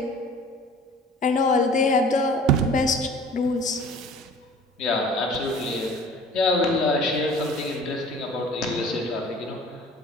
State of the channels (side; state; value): both; normal; correlation 0.46